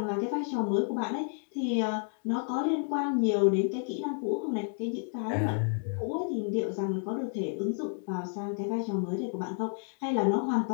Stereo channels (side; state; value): right; silent; 57 dB below the other